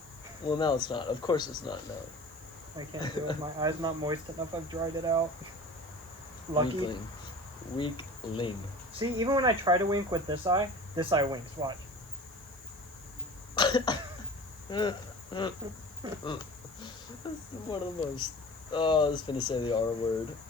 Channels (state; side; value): noise; right; hiss, 23 dB below the sound